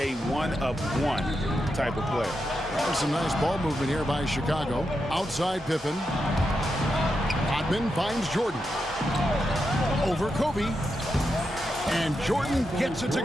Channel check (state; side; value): normal; both; correlation 0.86